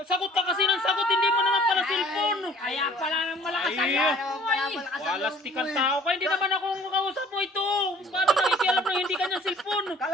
Sagot ka kasi ng sagot. Hindi mo naman pala cellphone. kaya pala nang malakas ang Ay, loob mo eh. walastik ang tao ka. Hindi naman ako ang kausap mo ito. Paano nakikialam na hindi kanyang cellphone? Kala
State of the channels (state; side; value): normal; both; correlation 0.53